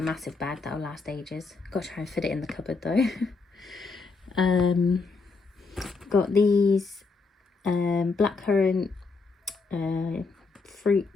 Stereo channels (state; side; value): quieter; right; 4.2 dB